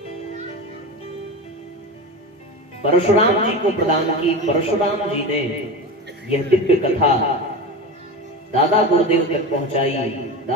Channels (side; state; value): both; normal; correlation 0.25